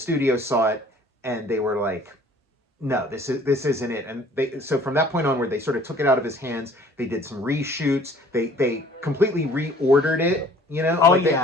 saw it, and they were like, no, this isn't it. And so from that point onward, they sort of took it out of his hands. They did some reshoots. They completely reordered it. You know,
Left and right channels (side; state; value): both; normal; correlation 0.53